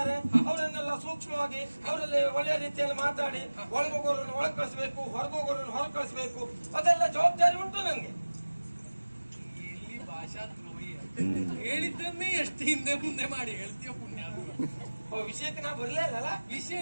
ಅವರನ್ನೆಲ್ಲ ಸೂಕ್ಷ್ಮವಾಗಿ ಅವರಲ್ಲಿ ಒಳ್ಳೆಯ ರೀತಿಯಲ್ಲಿ ಮಾತಾಡಿ ಒಳಗೋಗೋರನ್ನು ಒಳಗೆ ಕಳಿಸ್ಬೇಕು, ಹೊರಗೋಗೋರನ್ನು ಹೊರಗೆ ಕಳಿಸ್ಬೇಕು. ಅದೆಲ್ಲ ಜವಾಬ್ದಾರಿ ಉಂಟು ನನಗೆ. ಎಲ್ಲಿ ಭಾಷಾ ದ್ರೋಹಿ ಹೇಳಿದ್ದನ್ನೇ ಎಷ್ಟು ಹಿಂದೆ ಮುಂದೆ ಮಾಡಿ ಹೇಳ್ತೀಯ ಪುಣ್ಯ. ವಿಷಯಕ್ಕೆ ನಾ ಬರ್ಲೇ ಇಲ್ಲ. ವಿಷಯ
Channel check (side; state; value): both; inverted; correlation -1.00